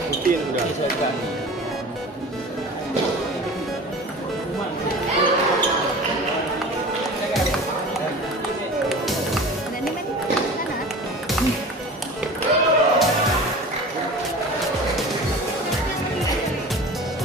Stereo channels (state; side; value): normal; both; correlation 0.38